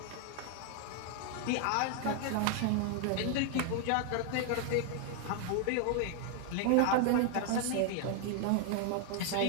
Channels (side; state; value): both; different; correlation 0.00